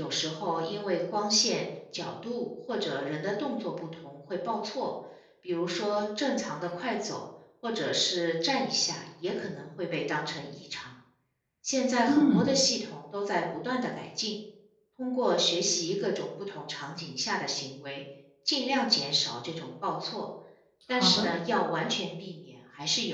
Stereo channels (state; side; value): identical; both; correlation 1.00